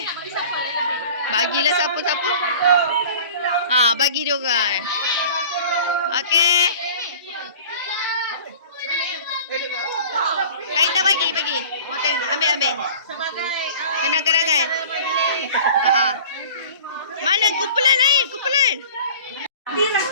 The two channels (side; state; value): both; inverted; correlation -0.43